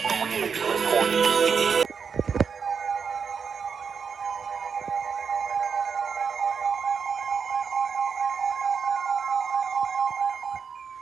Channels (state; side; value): quieter; left; 6.1 dB